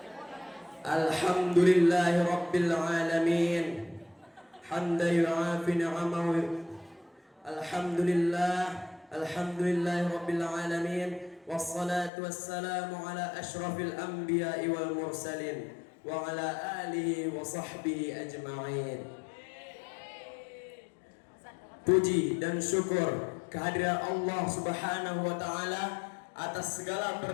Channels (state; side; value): drops out; right; at 12.1 s